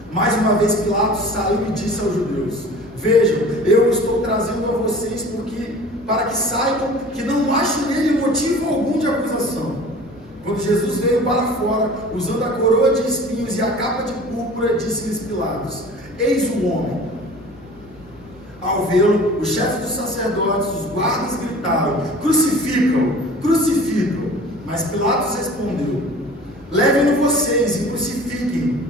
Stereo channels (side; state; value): both; normal; correlation 0.43